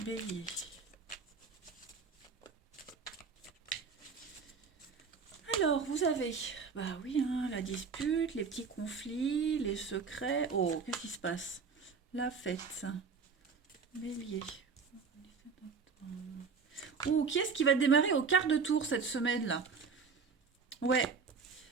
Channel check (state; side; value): quieter; left; 5.3 dB